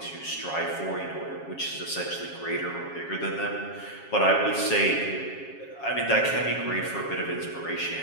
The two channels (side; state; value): right; late; 7.3 ms